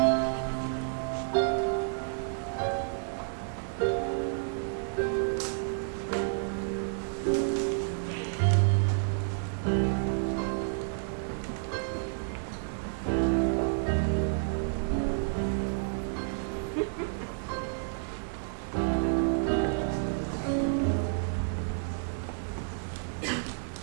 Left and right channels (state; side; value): silent; left; digital silence